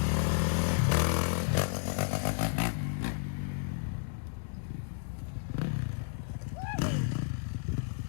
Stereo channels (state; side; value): silent; right; digital silence